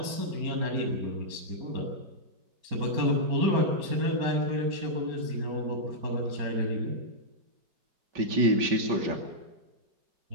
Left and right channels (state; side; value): late; left; 5.2 ms